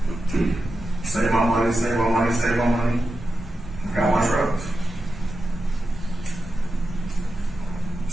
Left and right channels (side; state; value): both; normal; correlation 0.90